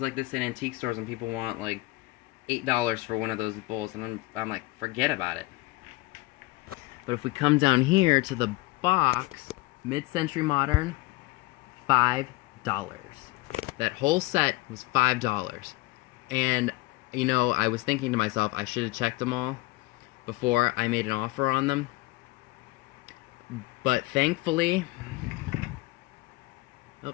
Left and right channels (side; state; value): right; quieter; 20.5 dB